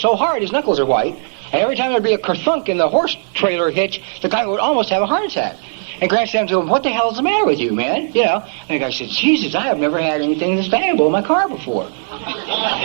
his knuckles are white, and every time there'd be a kerthunk in the horse trailer hitch, the guy would almost have a heart attack. And Grant said to him, what the hell's the matter with you, man? You know, and the guy said, Jesus, I have never had anything this valuable in my car before.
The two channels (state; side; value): silent; left; digital silence